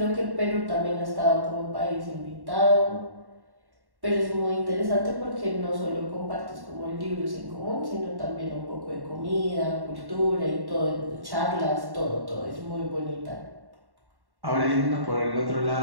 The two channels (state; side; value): late; left; 1.1 ms